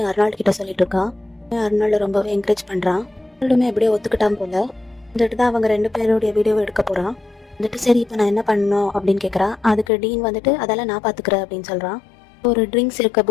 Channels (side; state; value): right; drops out; at 9.9 s